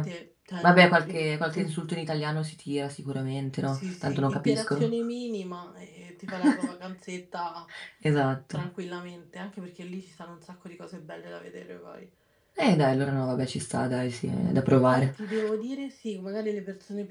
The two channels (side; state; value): both; identical; correlation 1.00